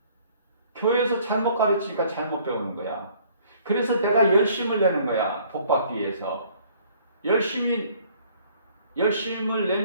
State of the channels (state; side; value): inverted; both; correlation -0.58